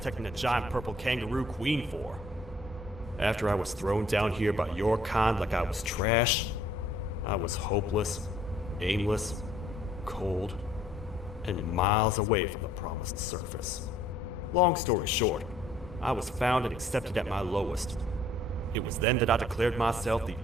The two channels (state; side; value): normal; both; correlation 0.60